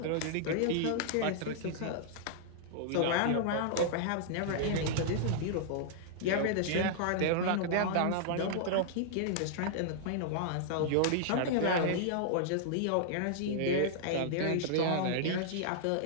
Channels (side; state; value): both; different; correlation -0.01